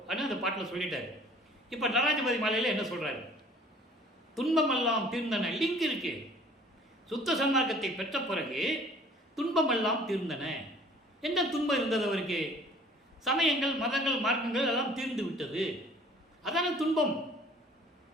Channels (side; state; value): both; normal; correlation 0.52